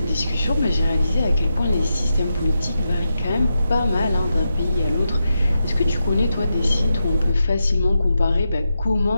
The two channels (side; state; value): both; inverted; correlation -0.88